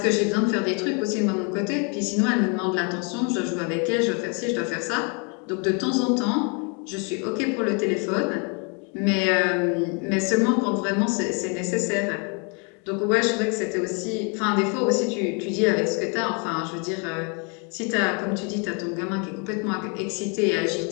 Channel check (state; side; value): quieter; right; 35.4 dB